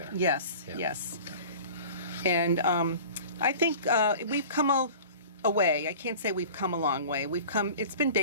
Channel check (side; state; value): both; inverted; correlation -0.41